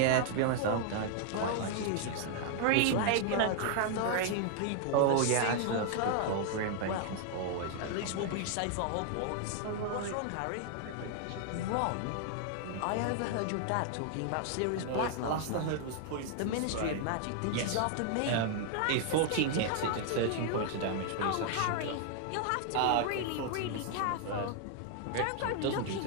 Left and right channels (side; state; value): both; different; correlation 0.00